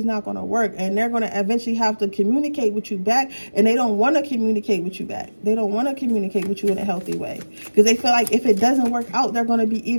not going to work, and they're going to eventually have to communicate with you back, and they don't want to communicate with you back. They don't want to communicate with you in a healthy way because they feel like if it doesn't work out, they're going to be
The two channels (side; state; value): both; inverted; correlation -1.00